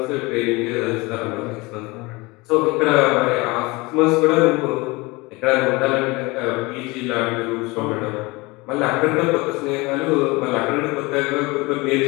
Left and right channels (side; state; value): right; quieter; 23.9 dB